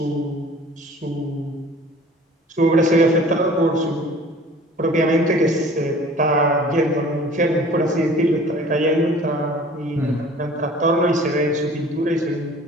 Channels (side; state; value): both; normal; correlation 0.48